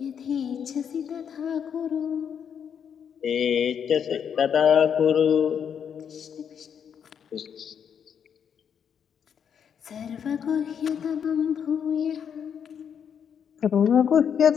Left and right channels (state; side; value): quieter; right; 7.8 dB